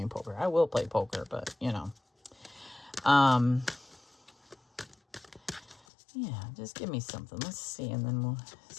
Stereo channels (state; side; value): drops out; right; at 5.8 s